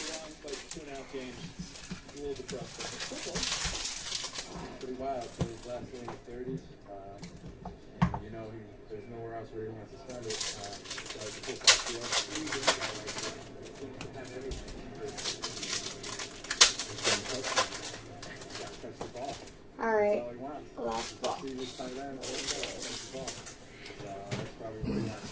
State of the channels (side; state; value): both; identical; correlation 1.00